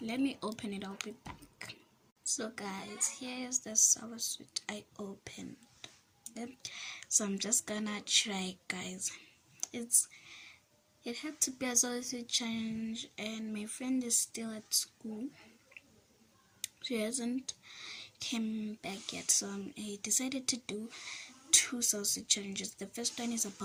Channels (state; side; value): identical; both; correlation 1.00